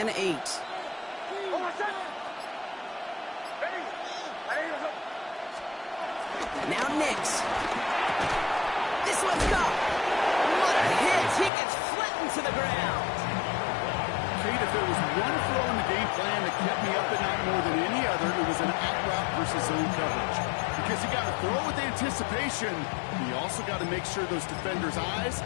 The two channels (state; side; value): drops out; right; at 11.5 s